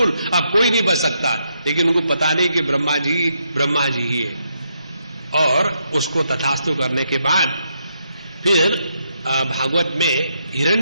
अब कोई नहीं बच सकता। लेकिन उनको पता नहीं कि ब्रह्मा जी ही है। और उसको तथास्तु करने के बाद फिर भागवत में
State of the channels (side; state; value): both; inverted; correlation -0.78